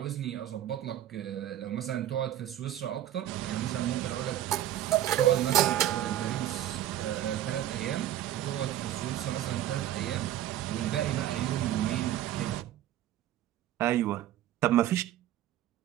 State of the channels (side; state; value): left; quieter; 12.5 dB